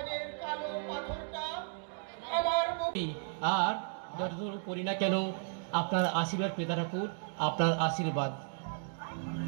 কালো পাথরটা আমার আর যতদূর করি না কেন আপনার আশীর্বাদ পেতে ঠাকুর, আপনার আশীর্বাদ।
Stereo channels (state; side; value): silent; left; digital silence